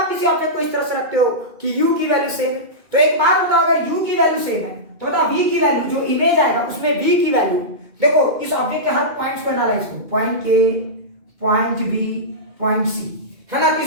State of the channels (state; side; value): late; left; 2.4 ms